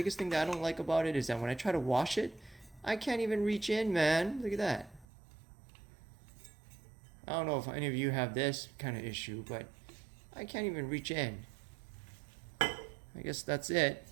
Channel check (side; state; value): left; drops out; at 5.1 s